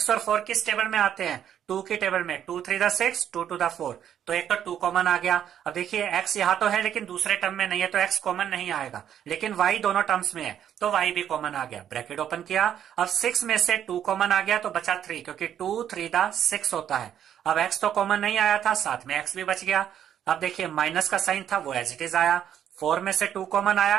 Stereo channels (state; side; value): quieter; left; 9.8 dB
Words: और 4 किस टेबल में आते हैं, 2 के टेबल में। 2 3 6, 2 2 4, तो एक तो 2 कॉमन आ गया। अब देखिए x यहां तो है लेकिन दूसरे टर्म में नहीं है, तो x कॉमन नहीं आएगा, लेकिन y दोनों टर्म्स में है तो y भी कॉमन आ गया। ब्रैकेट ओपन किया। अब 6 में से 2 कॉमन आ गया तो बचा 3, क्योंकि 2 3 6 होता है। अब x तो कॉमन नहीं आया था, साथ में x भी बच गया। अब देखिए माइनस का साइन था, वो एज इट इज आया। 4 में से 2 कॉमन